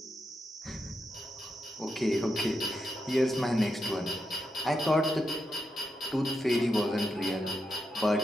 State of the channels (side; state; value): both; normal; correlation 0.85